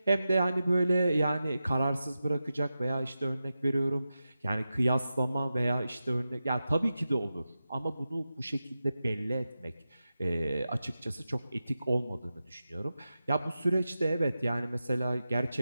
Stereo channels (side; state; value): both; inverted; correlation -0.92